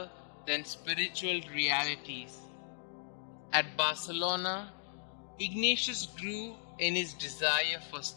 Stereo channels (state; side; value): silent; right; digital silence